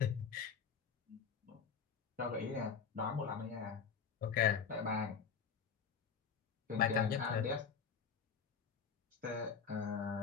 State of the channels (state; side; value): quieter; right; 6.4 dB